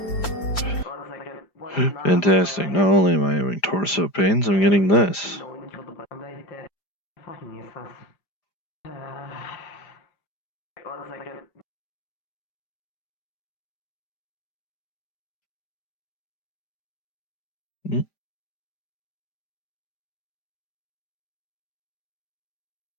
Fantastic. Not only am I having torso pains, I'm getting this.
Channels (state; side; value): late; right; 5.0 ms